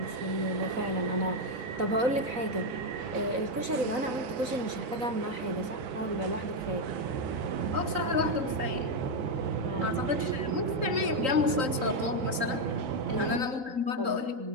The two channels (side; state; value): left; late; 3.8 ms